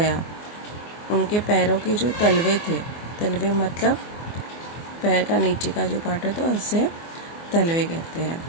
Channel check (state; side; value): late; right; 24 ms